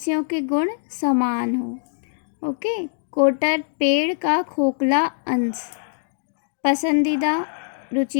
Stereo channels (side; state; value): right; silent; digital silence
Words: के गुण समान हो। ओके। कोटर, पेड़ का खोखला अंश। पसंदीदा,